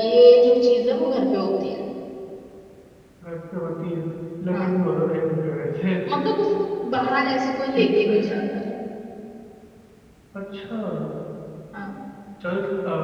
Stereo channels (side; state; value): both; identical; correlation 1.00